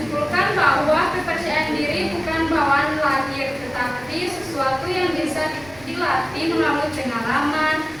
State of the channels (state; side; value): noise; right; rumble, 24 dB below the sound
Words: bahwa kepercayaan diri bukan bawaan lahir, tetapi sesuatu yang bisa dilatih melalui pengalaman,